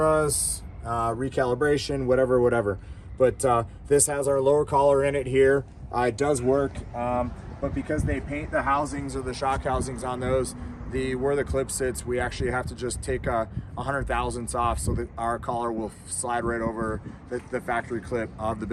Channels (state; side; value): identical; both; correlation 1.00